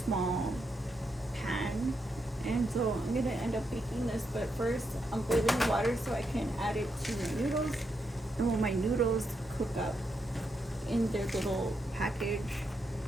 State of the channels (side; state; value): both; normal; correlation 0.82